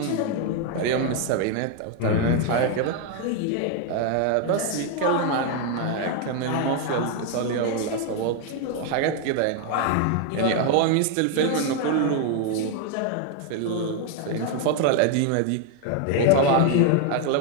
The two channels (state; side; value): different; both; correlation 0.01